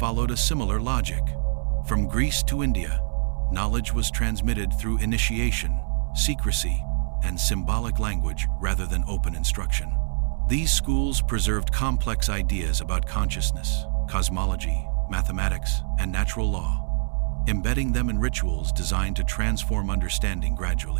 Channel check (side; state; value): left; silent; 62 dB below the other